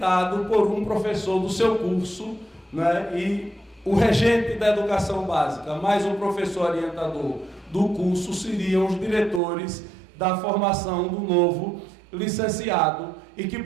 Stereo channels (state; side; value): drops out; left; at 9.4 s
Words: por um professor do seu curso né? E o regente da educação básica, mais um professor orientador do curso, seriam os diretores da formação do novo licenciado, e que